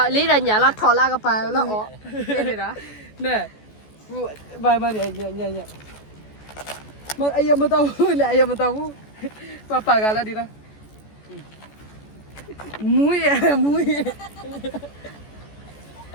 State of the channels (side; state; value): right; late; 14 ms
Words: Lấy ra nhà nó thò la cái bài nó ó. Đây đó. နဲဘိုင်မရညမအယမတော်ဘူးလေအယမတော်ဘူးပကလာဒီလားမူရ